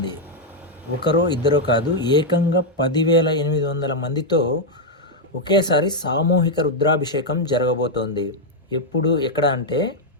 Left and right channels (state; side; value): normal; both; correlation -0.01